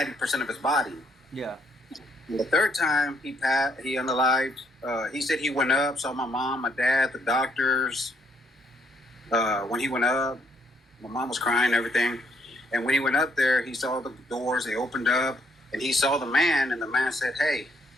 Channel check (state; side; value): normal; both; correlation 0.70